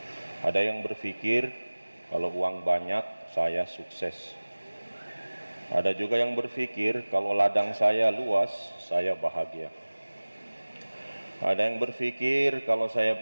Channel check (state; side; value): inverted; both; correlation -1.00